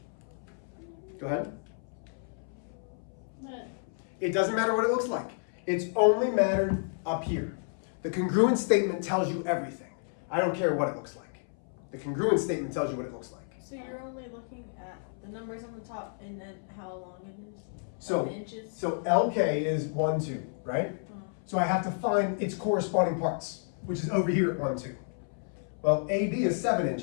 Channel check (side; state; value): right; silent; 57 dB below the other